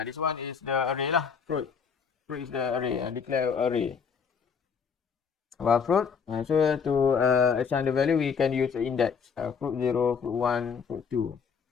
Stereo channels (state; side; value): quieter; right; 6.3 dB